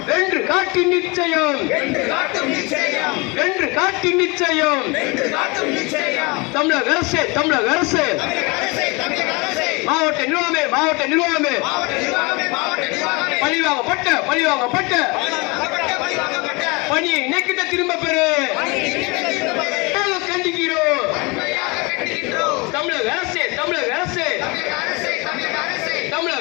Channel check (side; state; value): right; quieter; 27.4 dB